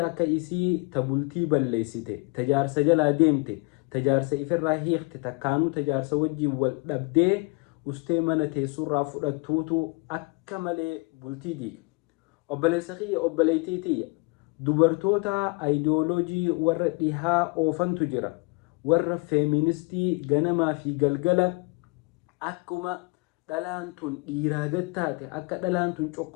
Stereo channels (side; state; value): right; quieter; 30.1 dB